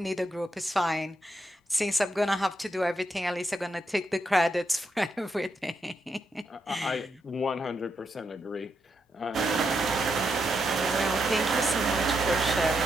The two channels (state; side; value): normal; both; correlation 0.82